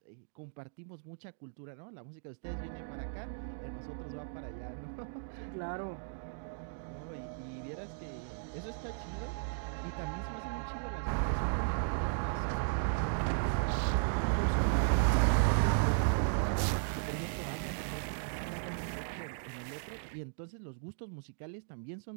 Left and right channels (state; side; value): silent; left; digital silence